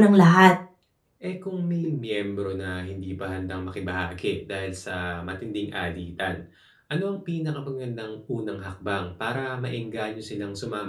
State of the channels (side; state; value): both; identical; correlation 1.00